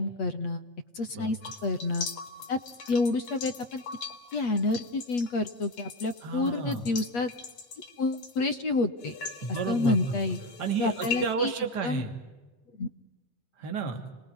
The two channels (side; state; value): right; late; 8.3 ms